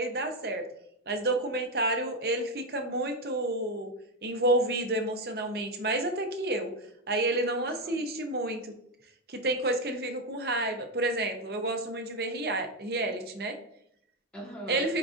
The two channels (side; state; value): both; normal; correlation 0.08